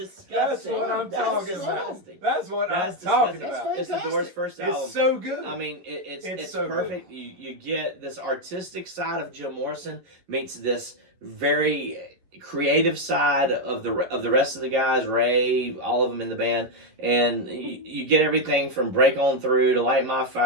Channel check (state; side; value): late; left; 11 ms